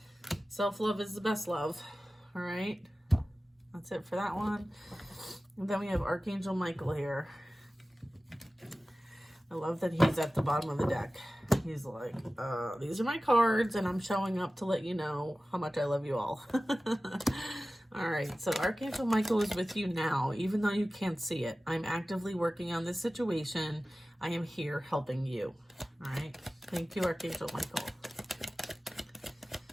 Self-love is the best love. All right. That's it for that one. And then we have Archangel Michael here. I love that he's at the bottom of the deck. He's like, these are my cards, and I'm showing up to let you know how much I love you all. All right, so Archangel Michael is with you now, even though you can't see it. I'm actively working on this situation. I am here helping you. All right, thank you, Archangel Michael.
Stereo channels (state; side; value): normal; both; correlation 0.96